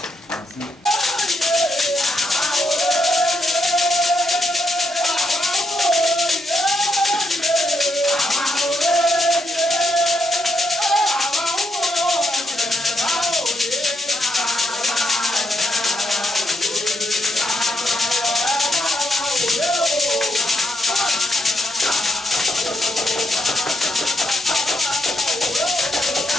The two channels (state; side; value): normal; both; correlation 0.78